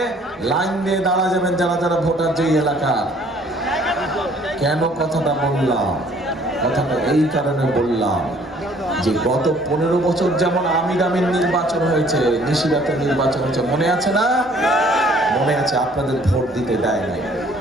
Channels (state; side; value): normal; both; correlation 0.58